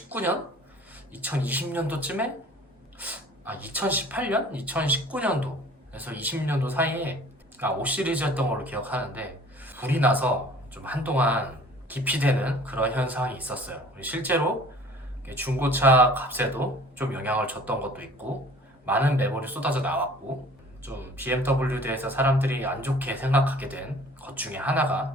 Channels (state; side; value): normal; both; correlation 0.49